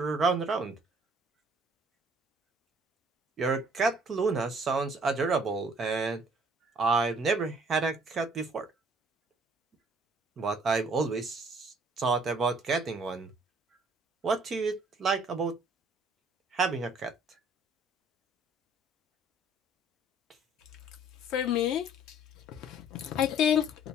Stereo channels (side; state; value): both; normal; correlation 0.58